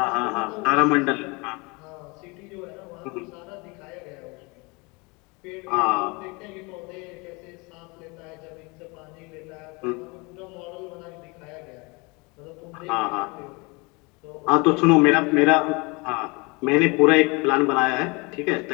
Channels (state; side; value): quieter; right; 27.9 dB